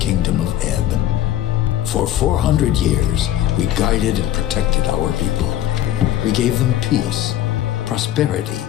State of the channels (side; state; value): right; quieter; 12.5 dB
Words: of Ebb. For 400 years, we guided and protected our people. We gave them peace, prosperity,